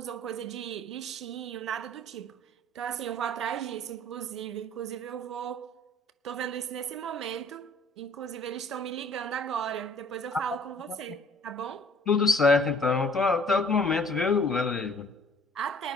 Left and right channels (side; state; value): both; normal; correlation 0.54